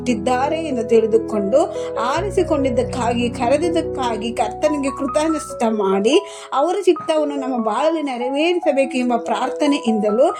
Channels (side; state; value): both; identical; correlation 1.00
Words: ಎಂದು ತಿಳಿದುಕೊಂಡು ಆರಿಸಿಕೊಂಡಿದ್ದಕ್ಕಾಗಿ, ಕರೆದಿದ್ದಕ್ಕಾಗಿ ಕರ್ತನಿಗೆ ಕೃತಜ್ಞತೆ ಮಾಡಿ ಅವರ ಚಿತ್ತವನ್ನು ನಮ್ಮ ಬಾಳಲ್ಲಿ ನೆರವೇರಿಸಬೇಕು ಎಂಬ ಪ್ರಾರ್ಥನೆಯಿಂದಲೂ